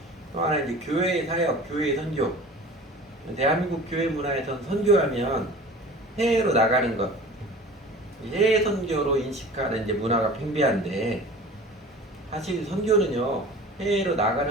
또 하나 이제 교회의 사역, 교회의 선교. 대한민국 교회 문화에선 선교하면 해외로 나가는 것, 해외 선교로 인식하는 이제 문화가 팽배한데, 사실 선교는요 해외로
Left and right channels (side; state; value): both; normal; correlation 0.41